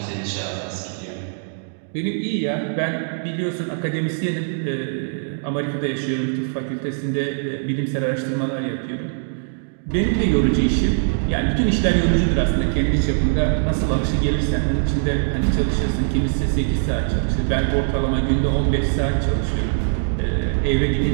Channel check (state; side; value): silent; left; digital silence